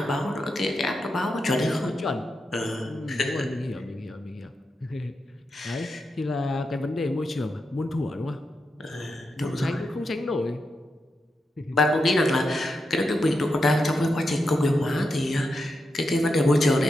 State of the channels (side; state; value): both; normal; correlation 0.86